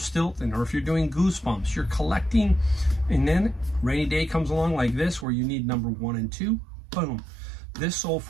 or if you're doing Goosebumps. You're collecting, and then rainy day comes along like this where you need number 1 and 2. Boom. This sold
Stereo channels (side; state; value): left; drops out; at 5.2 s